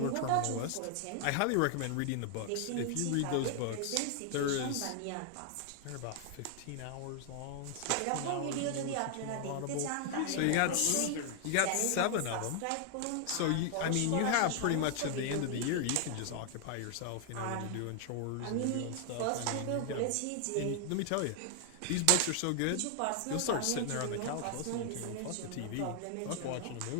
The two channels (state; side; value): different; both; correlation 0.00